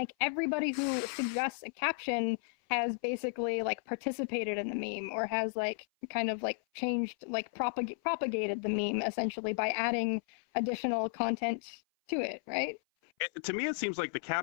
everybody who suggests a caption has basically like participated in the meme, or has like kind of like changed, like propagated the meme essentially by adding additional content to it, right? To me, it seems like the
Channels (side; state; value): right; silent; 55 dB below the other